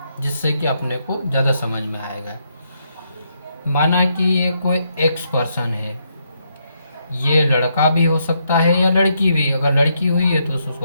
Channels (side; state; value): both; inverted; correlation -0.77